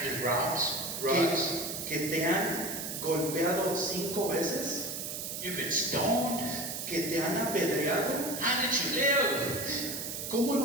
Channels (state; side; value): noise; right; hiss, 5 dB below the sound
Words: with rods. ¿Que te han golpeado 5 veces? You've been stoned. ¿Que te han apedreado? How did you live? ¿Cómo